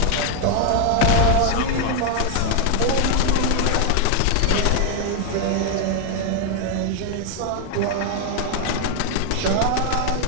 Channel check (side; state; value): both; different; correlation 0.00